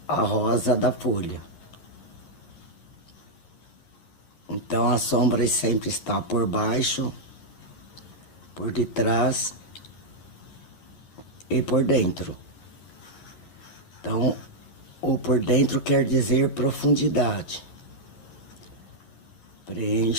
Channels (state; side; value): late; right; 11 ms